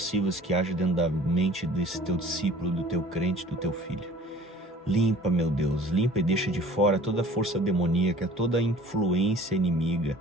que age dentro da mente desse teu discípulo, do teu crente, do teu filho. Limpa, meu Deus, limpa e deixa de fora toda a força demoníaca, toda a influência inimiga,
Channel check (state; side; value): normal; both; correlation 0.48